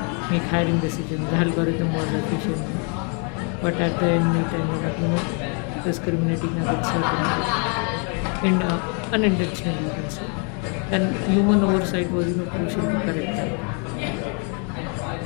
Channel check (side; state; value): right; quieter; 37.5 dB